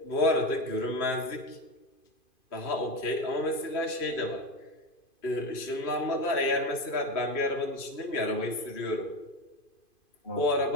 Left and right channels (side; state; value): right; late; 2.5 ms